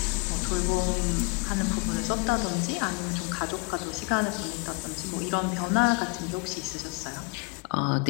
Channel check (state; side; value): quieter; right; 29.9 dB